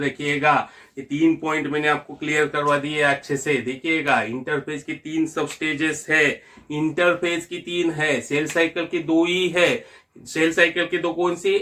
ये 3 पॉइंट मैंने आपको क्लियर करवा दिए अच्छे से। देखिएगा इंटरफेज की 3 सब स्टेजेस है, इंटरफेज की 3 है, सेल साइकिल की 2 ही है। सेल साइकिल की 2 कौन सी,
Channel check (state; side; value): identical; both; correlation 1.00